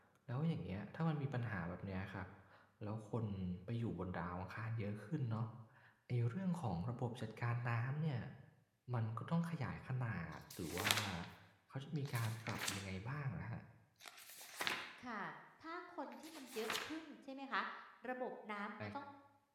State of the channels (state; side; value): identical; both; correlation 1.00